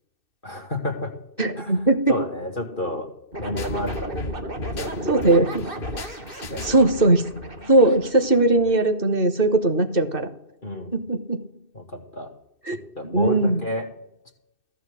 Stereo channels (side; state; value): right; late; 2.6 ms